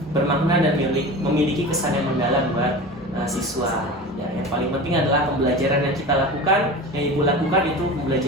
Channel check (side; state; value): both; normal; correlation 0.33